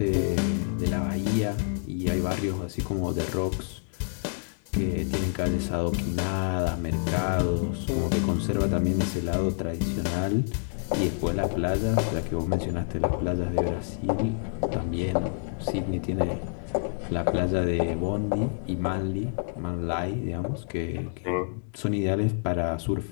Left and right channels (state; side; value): silent; right; digital silence